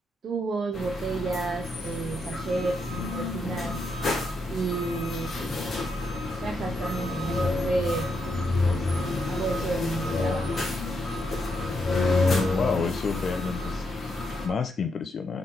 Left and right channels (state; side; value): normal; both; correlation 0.80